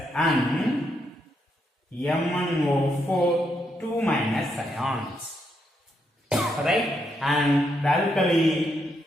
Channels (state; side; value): normal; both; correlation 0.79